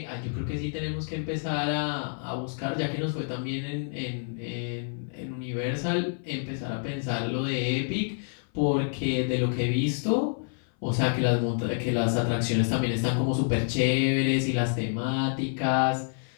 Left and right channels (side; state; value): right; silent; 59 dB below the other